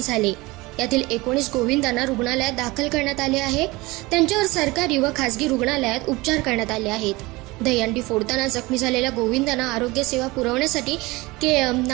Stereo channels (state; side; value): quieter; left; 22.2 dB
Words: झाले। यातील 19 गोविंदांना रुग्णालयात दाखल करण्यात आले आहे। त्यांच्यावर सरकारी व खासगी रुग्णालयात उपचार करण्यात आले आहेत। दहीहंडी फोडताना जखमी झालेल्या गोविंदांना आरोग्य सेवा पुरवण्यासाठी KM,